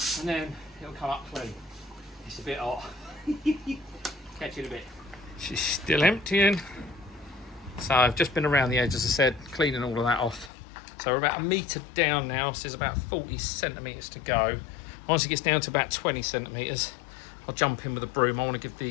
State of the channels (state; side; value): drops out; right; at 10.5 s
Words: it'll come up clean. It's a bit hot. Catch it a bit. She's still emptying. So I've just been around the edge, as I said, cleaning all of that off. So we're about 1 metre down now, so there's about 40 centimetres to go. Once it gets down to about 20 centimetres, I'll jump in with a broom. I want to give